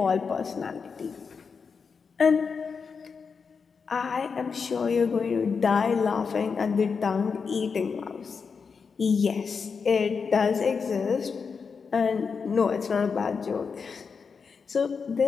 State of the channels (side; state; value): right; quieter; 5.5 dB